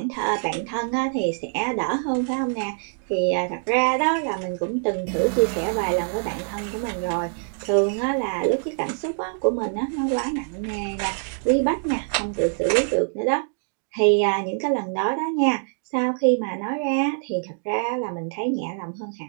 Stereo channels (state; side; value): silent; left; 62 dB below the other